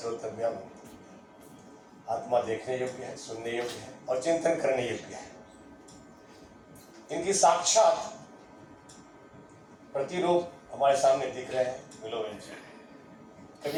आत्मा देखने योग्य है, सुनने योग्य है और चिंतन करने योग्य है। इनकी साक्षात प्रतिरूप हमारे सामने दिख रहे हैं मिलोवन जी।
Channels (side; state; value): both; identical; correlation 1.00